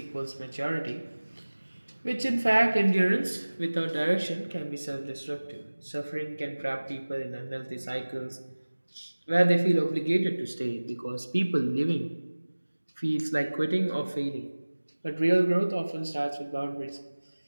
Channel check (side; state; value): both; inverted; correlation -1.00